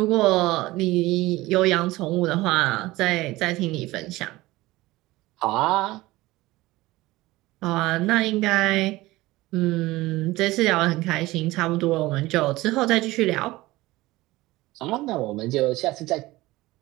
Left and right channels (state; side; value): quieter; left; 19.0 dB